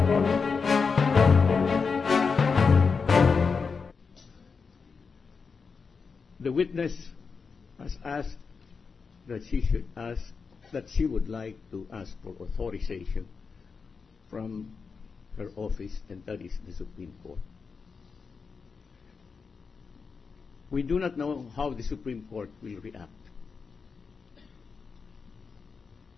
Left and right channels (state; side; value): quieter; right; 5.2 dB